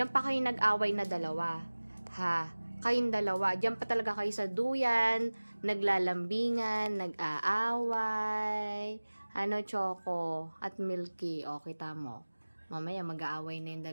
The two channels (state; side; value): inverted; both; correlation -1.00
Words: pa kayo nag-away na dalawa. Ha? Kayong dalawa. Diyan pa talaga kayo sa duyan, naglalambingan, nag-aaway. Ano, Choco at Milky? O, kita mo. Mamaya mag-aaway na yung